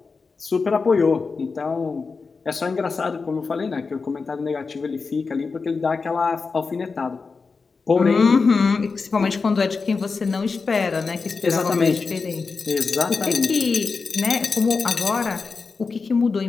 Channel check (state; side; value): quieter; right; 4.6 dB